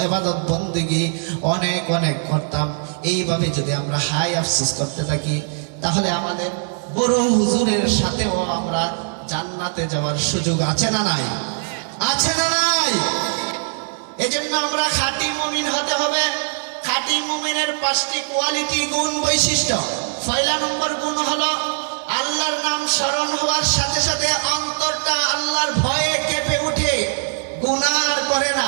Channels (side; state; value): left; silent; 56 dB below the other